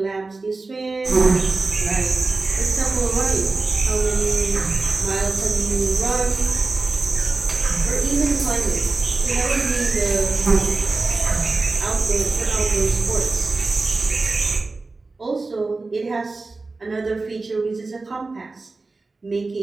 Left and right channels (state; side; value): quieter; left; 3.6 dB